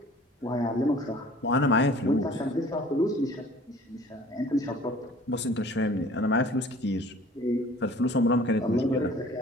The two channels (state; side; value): normal; both; correlation 0.49